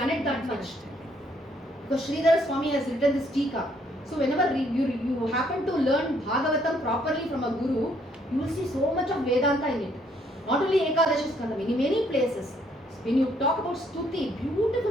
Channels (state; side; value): normal; both; correlation 0.68